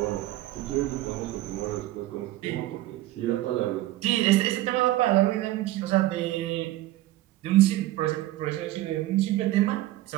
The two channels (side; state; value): left; quieter; 15.9 dB